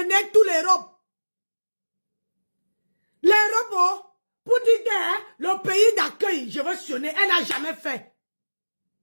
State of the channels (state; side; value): inverted; both; correlation -1.00